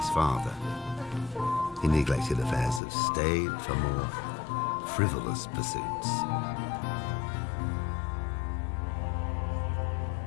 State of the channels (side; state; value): right; drops out; at 2.8 s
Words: father. He neglected affairs of state for more frivolous pursuits.